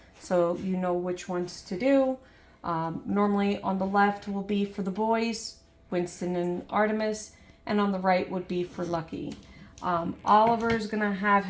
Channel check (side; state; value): both; identical; correlation 1.00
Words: so you know which ones to do. Normally on the left will be for the boys, Winston and Artemis, and on the right would be for Lucky. Oliver's gonna have